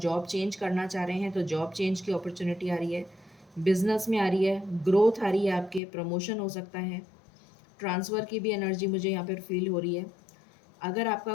चेंज करना चाह रहे हैं तो जॉब चेंज की अपॉर्चुनिटी आ रही है, बिजनेस में आ रही है, ग्रोथ आ रही है, आपके प्रमोशन हो सकता है, ट्रांसफ़र की भी एनर्जी मुझे यहाँ पर फील हो रही है। अगर आपका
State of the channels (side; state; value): right; drops out; at 5.8 s